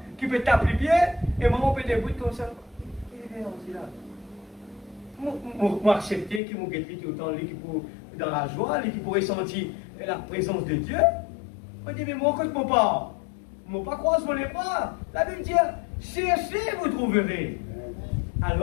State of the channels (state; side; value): drops out; right; at 6.4 s